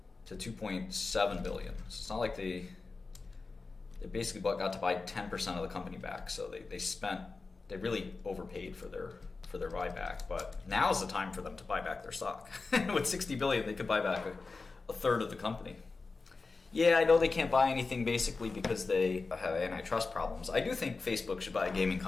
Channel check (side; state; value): right; quieter; 4.0 dB